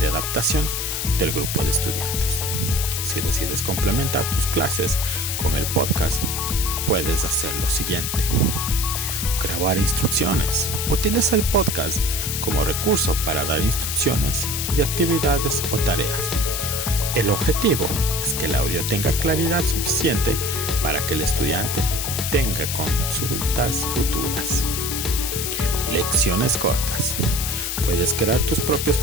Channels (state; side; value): noise; left; hiss, 2 dB below the sound